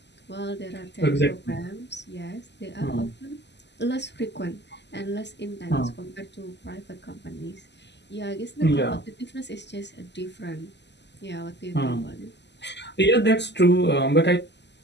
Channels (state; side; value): late; right; 0.50 ms